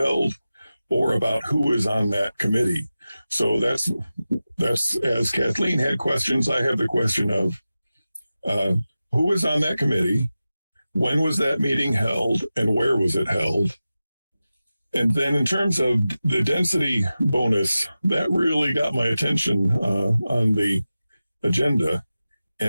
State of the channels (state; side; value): inverted; both; correlation -0.95